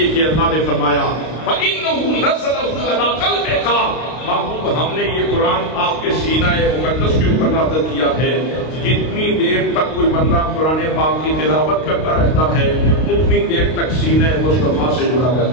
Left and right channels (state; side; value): late; right; 32 ms